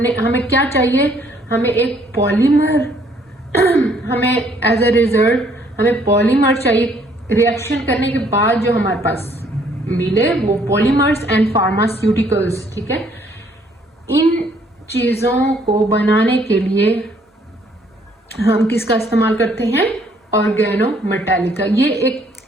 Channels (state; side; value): normal; both; correlation 0.64